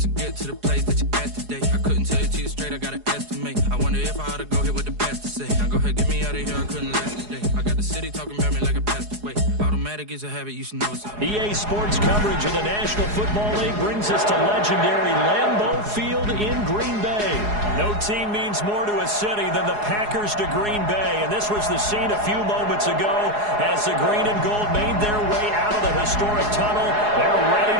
to get to the place that you at today. I couldn't tell it to you straight, I gotta estimate. I wonder if I ought to go here with the pastor say. Now go ahead, get me out of here, I couldn't last today. I got the city talking about me like a passed away. Automatic is a habit, you should know it's up. EA Sports coverage of the National Football League brings us to legendary Lambeau Field in Green Bay. No team means more to a city than the Packers to Green Bay, and this was the scene a few moments ago as the green and gold made their way out of the historic tunnel. They're ready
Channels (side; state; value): left; late; 4.8 ms